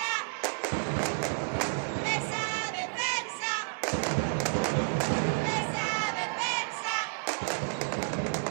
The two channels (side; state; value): left; silent; 57 dB below the other